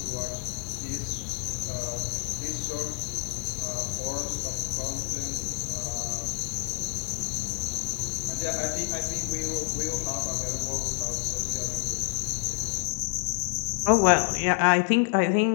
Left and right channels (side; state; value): right; quieter; 29.8 dB